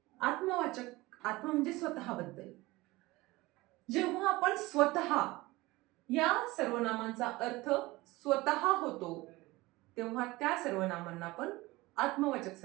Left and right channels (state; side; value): quieter; left; 20.5 dB